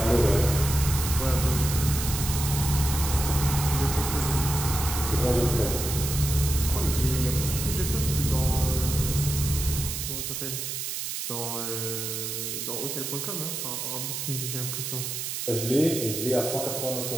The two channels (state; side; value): noise; right; hiss, 4 dB below the sound